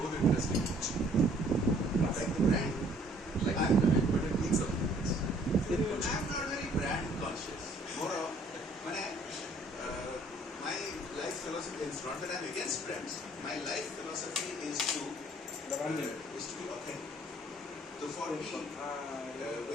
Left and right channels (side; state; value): both; normal; correlation 0.59